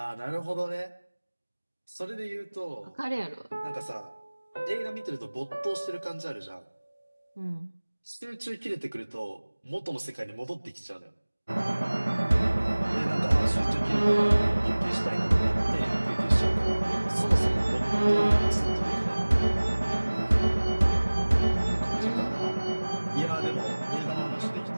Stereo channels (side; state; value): both; inverted; correlation -1.00